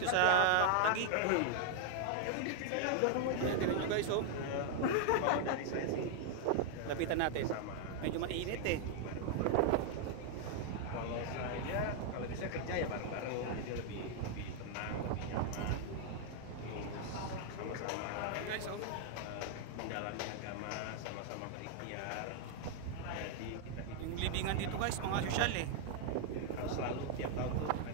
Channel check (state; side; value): different; both; correlation 0.00